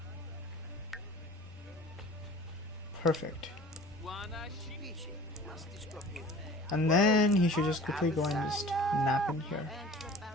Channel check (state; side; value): normal; both; correlation 0.45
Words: Perfect. And then he should just quickly go and just nap in here.